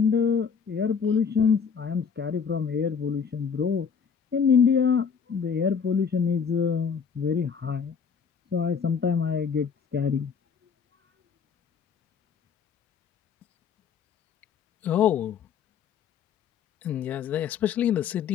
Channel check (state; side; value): quieter; right; 6.5 dB